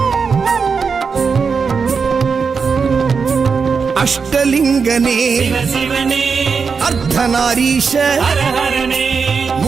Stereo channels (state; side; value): quieter; left; 5.5 dB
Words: அஷ்டலிங்கனே சிவசிவனே அர்த்தநாரீஷ ஹரஹரனே